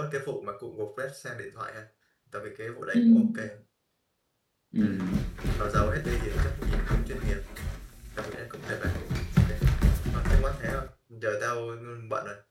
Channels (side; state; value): both; identical; correlation 1.00